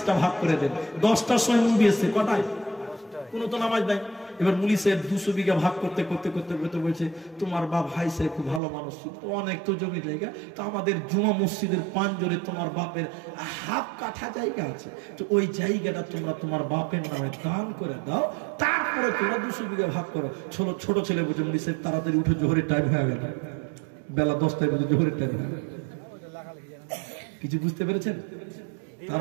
ভাগ করে দেন। 10টার সময় মুভি এসছে, কটায়? কোনো তো নামাজ নাই। এবার মুলি সাহেব 200 বিঘা ভাগ করতে করতে করতে করতে বলছে তোমার বাপ হাই সাহেব খুব ভালো মানুষ ছিল, তো অনেক তো জমি জায়গা, তো আমাদের জুমা মসজিদের পাঞ্জরে তোমার বাপের হাফ কাঠা জায়গা আছে, তো ওই জায়গাটা তোমরা তোমার বাপের নামে দান করে দাও, তারপরে তোমরা 200 বিঘা ভাগ করো। ছোট ছেলে বলছে মুলি সাহেব তাড়াতাড়ি উঠে জোহরের টাইম হয়ে গেল, বেলা 10টায় বলছে জোহরের টাইম হয়ে গেল। কিছু বুঝতে পেরেছেন?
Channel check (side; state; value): left; drops out; at 8.6 s